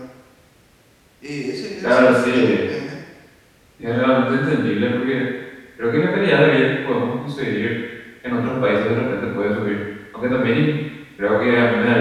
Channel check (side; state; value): both; identical; correlation 1.00